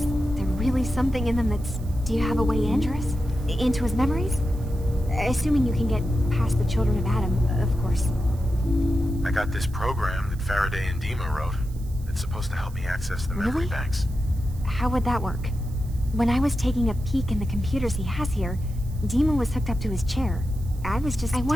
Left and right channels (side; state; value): right; noise; hiss, 24 dB below the sound